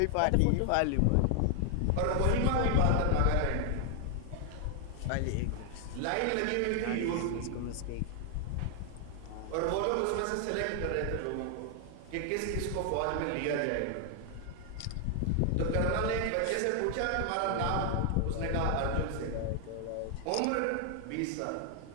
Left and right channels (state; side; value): different; both; correlation 0.00